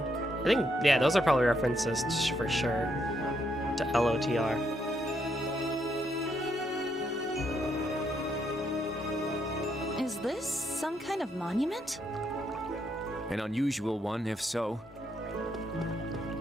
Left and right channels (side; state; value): both; normal; correlation 0.76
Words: I think, yeah, those are probably references for sure to LOTR. Is this some kind of monument? An unusual one, if so.